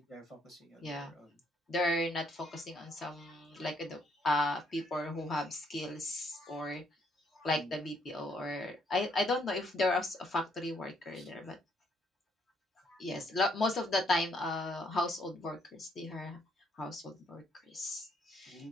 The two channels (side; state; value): both; normal; correlation 0.70